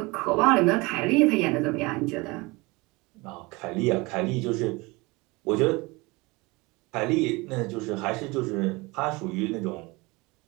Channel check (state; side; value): quieter; left; 24.3 dB